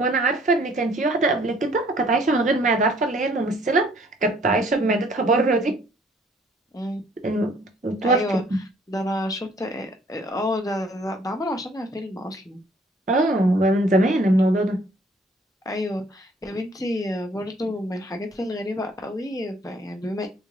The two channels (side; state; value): both; normal; correlation 0.60